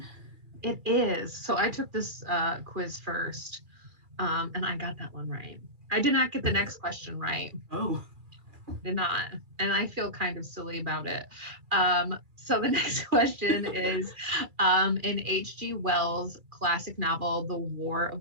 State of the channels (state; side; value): late; left; 2.3 ms